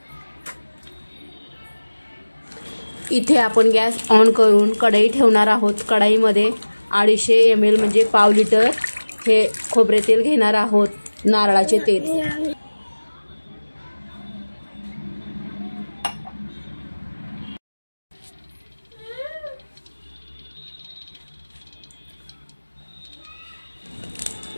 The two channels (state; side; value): inverted; both; correlation -1.00